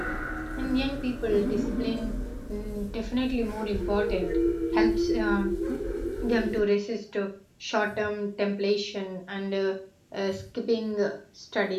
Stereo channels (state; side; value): identical; both; correlation 1.00